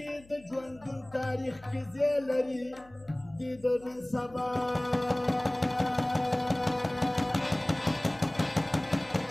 د ژوندون تاریخ کې ځای لري د نن سبا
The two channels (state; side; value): noise; left; hum, 25 dB below the sound